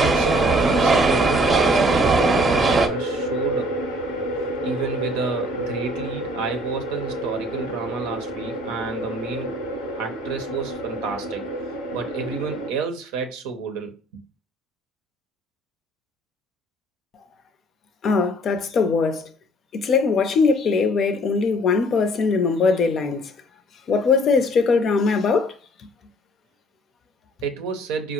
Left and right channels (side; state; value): both; normal; correlation 0.57